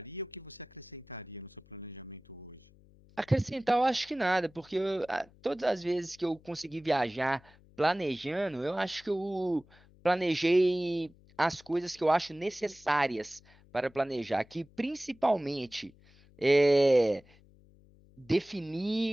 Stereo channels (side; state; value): left; noise; hum, 27 dB below the sound